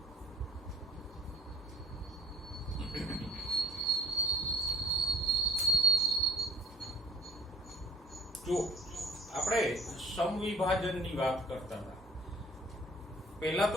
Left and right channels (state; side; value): normal; both; correlation 0.53